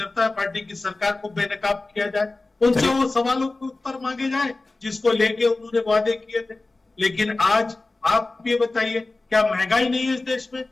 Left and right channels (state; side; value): quieter; right; 3.2 dB